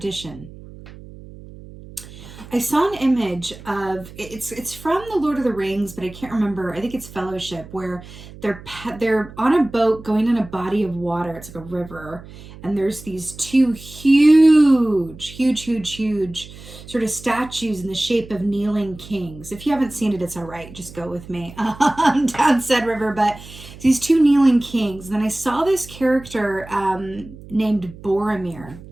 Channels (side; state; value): right; noise; hum, 17 dB below the sound